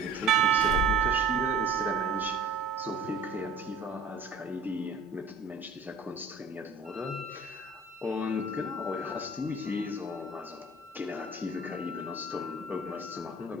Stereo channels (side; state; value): left; quieter; 3.4 dB